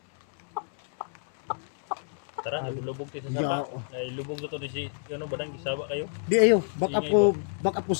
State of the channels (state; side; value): silent; right; 59 dB below the other